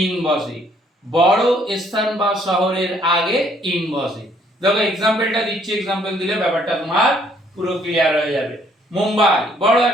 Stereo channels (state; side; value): normal; both; correlation 0.64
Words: ইন বসে। বড় স্থান বা শহরের আগে ইন বসে। দেখো এক্সাম্পলটা দিচ্ছি, এক্সাম্পল দিলে ব্যাপারটা তোমার পুরো ক্লিয়ার হয়ে যাবে। মুম্বাই বড়